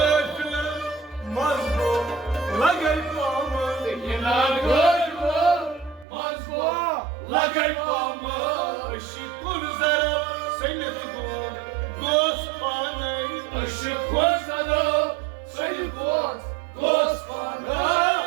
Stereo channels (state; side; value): drops out; left; at 6.1 s